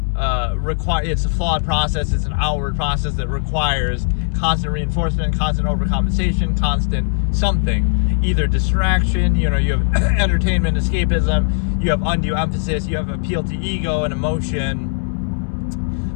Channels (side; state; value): right; silent; digital silence